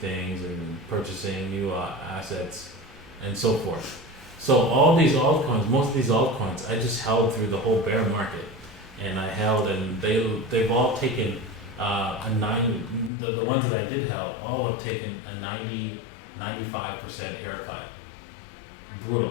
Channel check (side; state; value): right; drops out; at 13.1 s